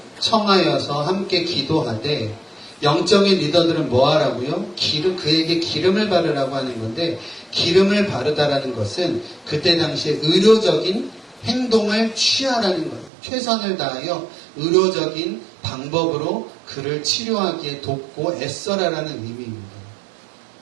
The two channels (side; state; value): left; drops out; at 13.1 s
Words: 청하여서 함께 기도하되 영적인 리더들은 뭐 하라고요? 그에게 기름을 바르라고 하는 건데, 기름을 바르다라는 것은 그때 당시에 의료적인 행동을 취하라는 거예요. 최선을 다하여 의료적인 방법으로 그를 치료하기에 돕고 애써라라는 의미입니다.